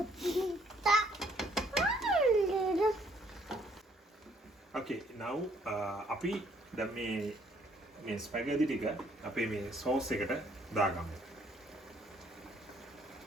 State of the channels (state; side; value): normal; both; correlation 0.65